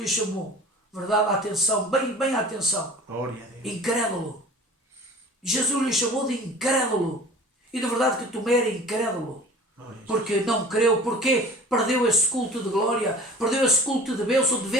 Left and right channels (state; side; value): normal; both; correlation 0.43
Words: chamou, verdade, atenção, bem atenção. Glória a Deus. Incrédulo. Jesus lhe chamou de incrédulo. E de verdade que Tomé era incrédulo. Porque não creu, porque perdeu esse culto de glória, perdeu esse culto de bênção, de